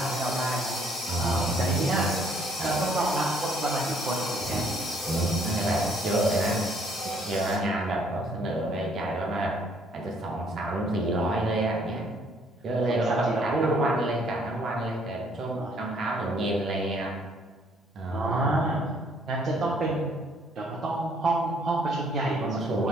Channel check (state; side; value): normal; both; correlation 0.64